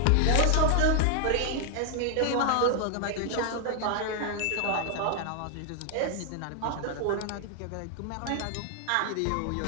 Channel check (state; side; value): different; both; correlation 0.00